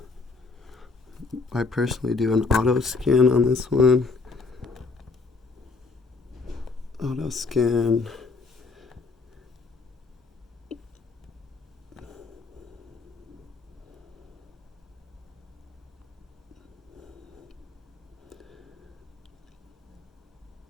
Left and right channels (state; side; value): quieter; right; 4.2 dB